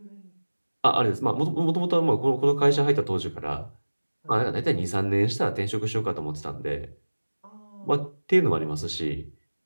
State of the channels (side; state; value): both; inverted; correlation -1.00